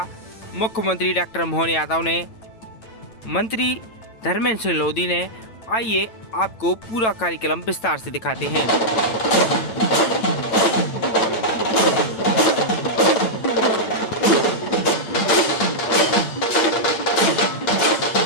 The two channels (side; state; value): right; late; 9.0 ms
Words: मुख्यमंत्री डॉक्टर मोहन यादव ने, मंत्री धर्मेंद्र सलोदी ने। आइए आपको पूरा कार्यक्रम विस्तार से दिखाते हैं।